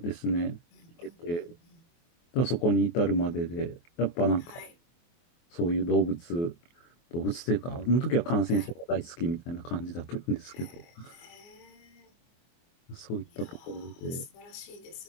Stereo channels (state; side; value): late; right; 24 ms